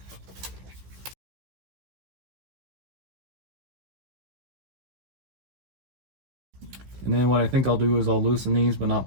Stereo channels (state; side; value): late; left; 16 ms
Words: And then what I think I'll do is I'll loosen these but